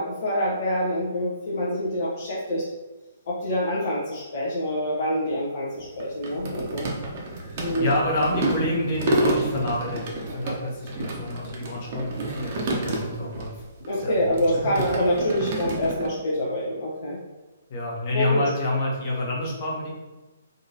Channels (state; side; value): inverted; both; correlation -0.62